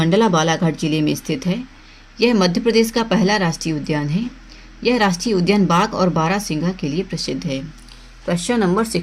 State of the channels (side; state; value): both; identical; correlation 1.00